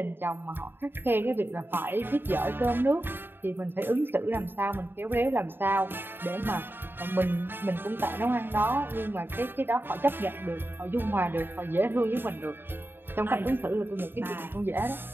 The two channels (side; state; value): left; late; 0.10 ms